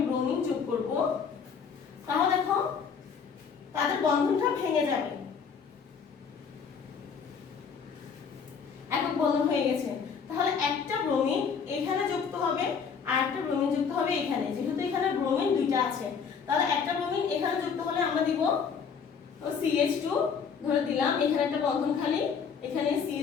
ব্রোমিন যোগ করব তাহলে দেখো তাদের বন্ধনটা ভেঙে যাবে, একক বন্ধন হয়ে গেছে। তাহলে একটা ব্রোমিন এখানে যুক্ত হবে আর একটা ব্রোমিন যুক্ত হবে এখানে, যেহেতু এখানে ব্রোমিন দুইটা আছে তাহলে একটা ব্রোমিন এখানে যুক্ত হলে আমরা দিব CH2 ধরে দিলাম, এখানে একটা বন্ধন খালি, এখানে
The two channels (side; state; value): right; quieter; 6.3 dB